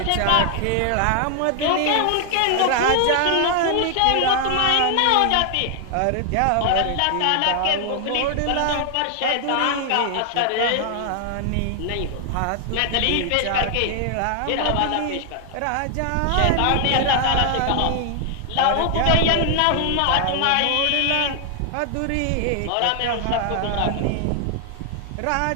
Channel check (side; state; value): both; different; correlation 0.00